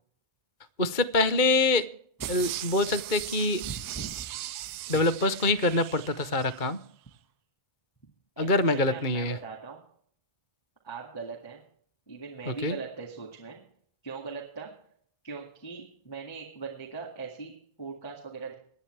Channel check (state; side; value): late; right; 2.2 ms